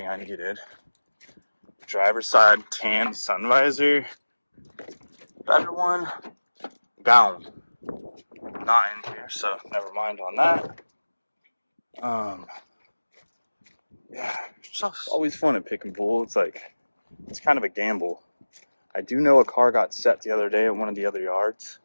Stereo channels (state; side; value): inverted; both; correlation -1.00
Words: I needed. Driver's side tan sun visor. Better one. Down. Not in here, so never mind on that. Yeah, it's just always fun at Pick and Pull. It's like, it's kind of a gamble. I do know a car got set the other day at one of the other yards,